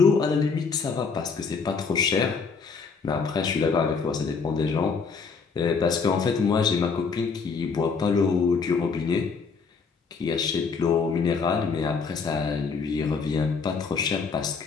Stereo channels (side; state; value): right; quieter; 5.1 dB